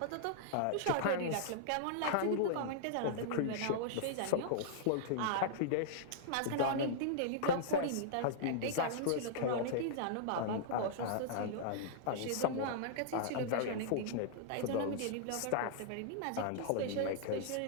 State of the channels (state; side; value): different; both; correlation -0.01